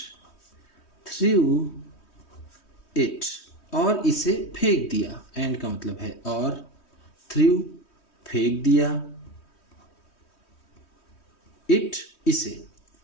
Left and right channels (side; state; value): right; late; 3.2 ms